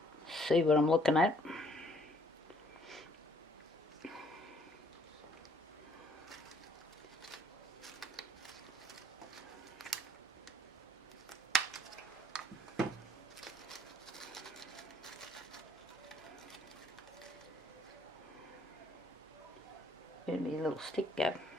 see what I'm looking at. Give me a little stick go.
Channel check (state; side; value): normal; both; correlation 0.63